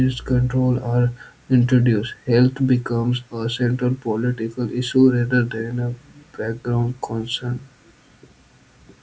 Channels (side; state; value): both; identical; correlation 1.00